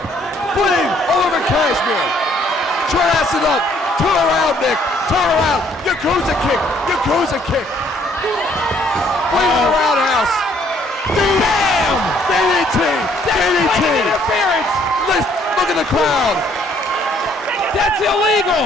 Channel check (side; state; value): both; normal; correlation 0.64